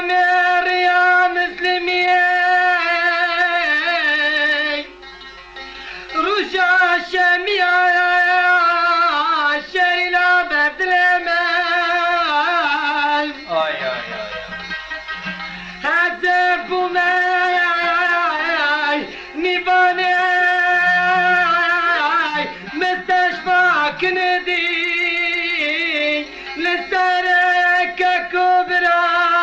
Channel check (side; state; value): both; identical; correlation 1.00